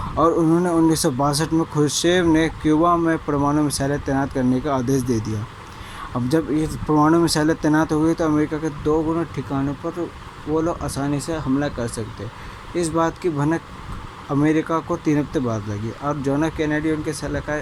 और उन्होंने 1962 में खुर्शेव ने क्यूबा में परमाणु मिसाइलें तैनात करने का आदेश दे दिया। अब जब ये परमाणु मिसाइलें तैनात हो गई तो अमेरिका के 2 गुना ठिकानों पर वो लोग आसानी से हमला कर सकते। इस बात की भनक अमेरिका को 3 हफ्ते बाद लगी और जॉन एफ कैनेडी उनके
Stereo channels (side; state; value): both; identical; correlation 1.00